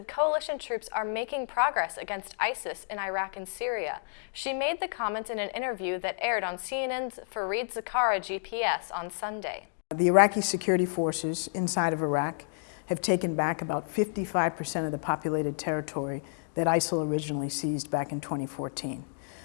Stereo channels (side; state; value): right; silent; digital silence